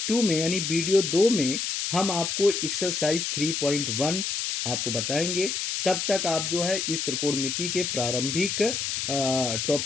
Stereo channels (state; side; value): noise; left; hiss, 2 dB below the sound